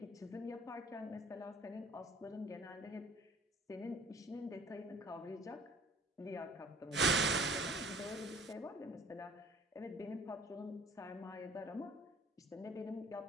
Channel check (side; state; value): both; normal; correlation 0.50